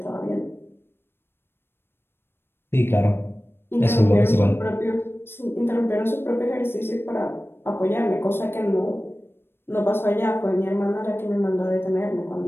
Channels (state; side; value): late; right; 0.11 ms